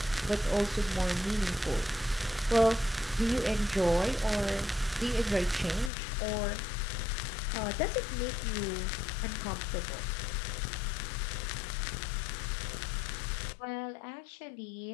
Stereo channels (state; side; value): drops out; right; at 5.9 s